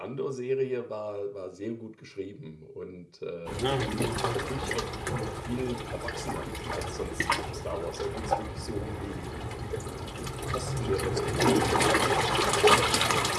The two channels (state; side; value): identical; both; correlation 1.00